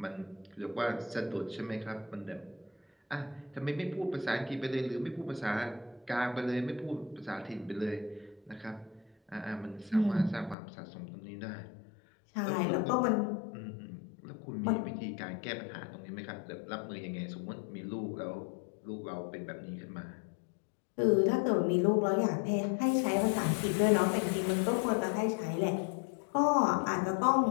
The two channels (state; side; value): drops out; right; at 10.6 s